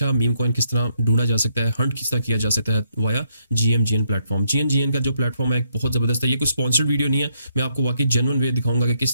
मीम कॉइन किस तरह ढूंढा जा सकता है, हंट किस तरह किया जा सकता है वाया जीएमजीएन प्लेटफॉर्म। जीएमजीएन का जो प्लेटफॉर्म है एक बहुत ज़बरदस्त है। ये कोई स्पॉन्सर्ड वीडियो नहीं है, मैं आपको वाकई जेन्युइन वे दिखाऊंगा कि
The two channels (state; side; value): inverted; both; correlation -0.75